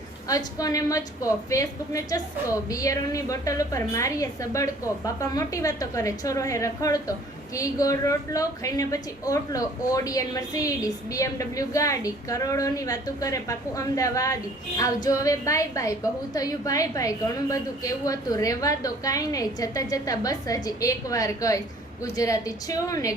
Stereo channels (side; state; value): both; normal; correlation 0.54